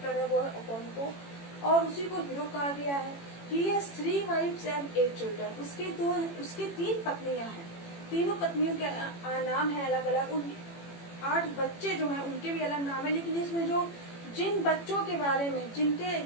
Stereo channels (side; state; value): right; late; 18 ms